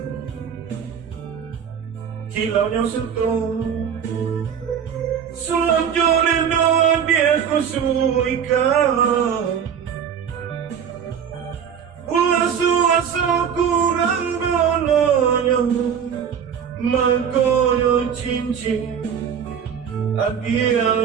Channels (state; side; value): quieter; left; 7.9 dB